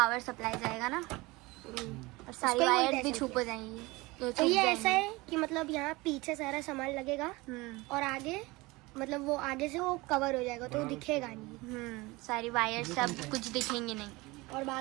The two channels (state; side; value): quieter; left; 22.5 dB